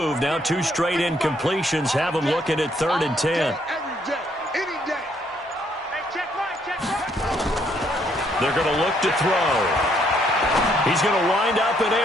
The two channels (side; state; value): both; normal; correlation 0.69